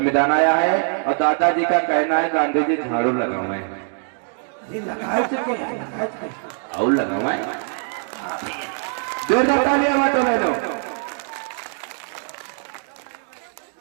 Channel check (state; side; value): silent; left; 55 dB below the other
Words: आया है और दादाजी का कहना है गांधी जी झाड़ू लगावे और लगावे। जोरदार तालियां हुआ तो बहनों।